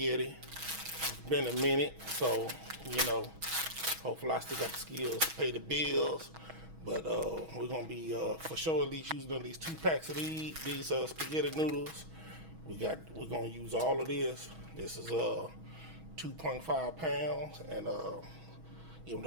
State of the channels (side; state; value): left; late; 6.2 ms